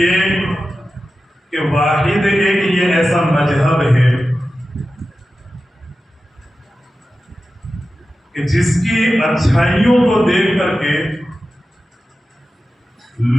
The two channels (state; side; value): normal; both; correlation 0.93